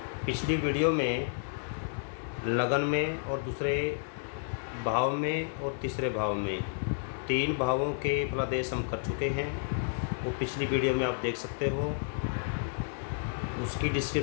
पिछली वीडियो में लगन में और दूसरे भाव में और तीसरे भाव में 3 भावों के फलादेश हम कर चुके हैं। वो पिछली वीडियो में आप देख सकते हो, उसकी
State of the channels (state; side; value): silent; right; 57 dB below the other